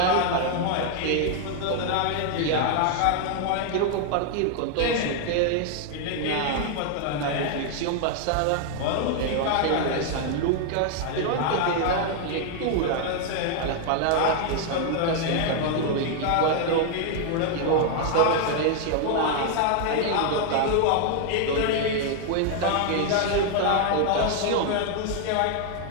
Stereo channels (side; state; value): both; different; correlation 0.00